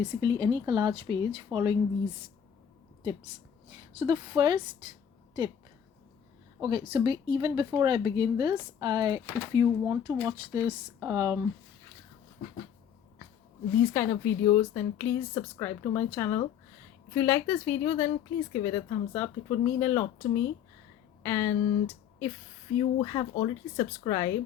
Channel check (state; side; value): quieter; right; 8.7 dB